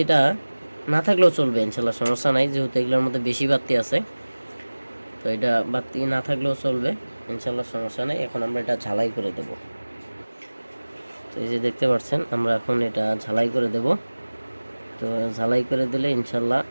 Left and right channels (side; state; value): both; inverted; correlation -1.00